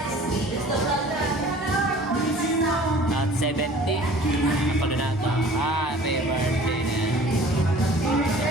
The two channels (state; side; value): normal; both; correlation 0.48